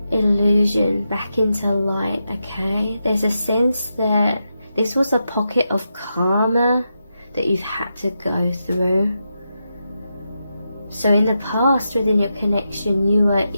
illusion back into light. Okay, there's a sense that this was a pocket of karma that you've had to go through. So in the past, within your connection, you were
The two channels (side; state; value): both; inverted; correlation -0.87